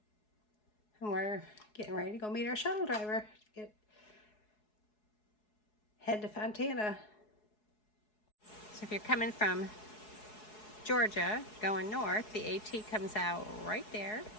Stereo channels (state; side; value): late; right; 4.7 ms